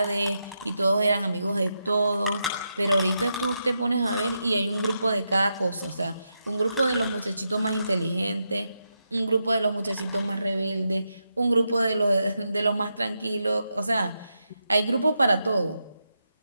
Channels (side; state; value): both; inverted; correlation -0.85